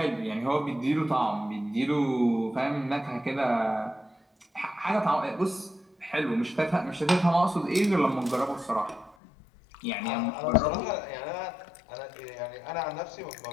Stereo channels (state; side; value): drops out; right; at 9.2 s